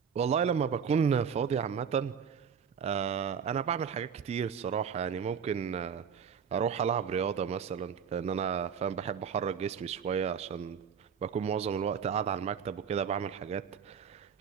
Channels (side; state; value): left; quieter; 7.1 dB